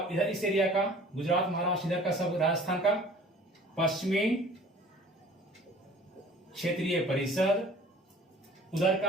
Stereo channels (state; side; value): normal; both; correlation 0.49